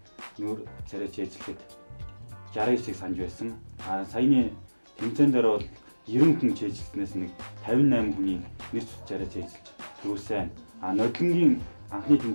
нүүр царай цээжлэхэд 69-ийг санаж байсан. Саяны тэмцээн дээр бол 90 хүн цээжилснээс нэг 58 хүний нэр зүс царай цээжилж төрүүлсэн. Нодлонгийн анхны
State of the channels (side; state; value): both; inverted; correlation -1.00